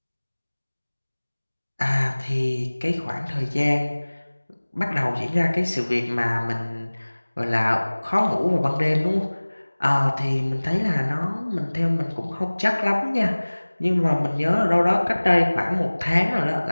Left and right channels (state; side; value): inverted; both; correlation -1.00